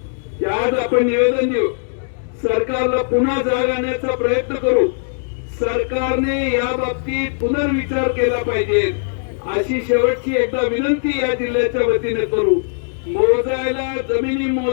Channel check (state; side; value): silent; right; digital silence